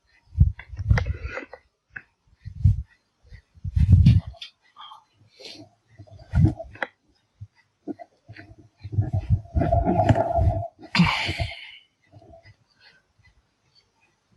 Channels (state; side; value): identical; both; correlation 1.00